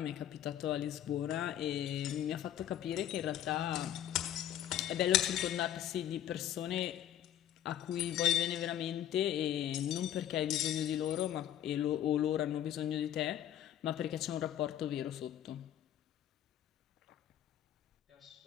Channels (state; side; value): quieter; right; 11.2 dB